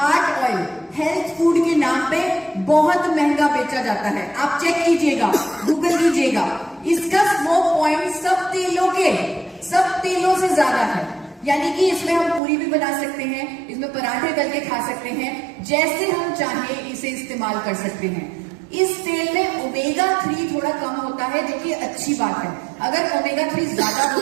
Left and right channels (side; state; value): left; drops out; at 12.4 s